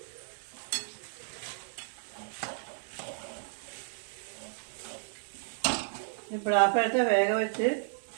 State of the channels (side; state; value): left; silent; digital silence